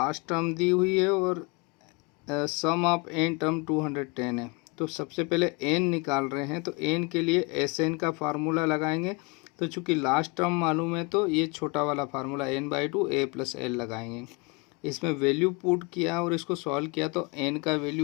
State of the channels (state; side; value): quieter; right; 29.3 dB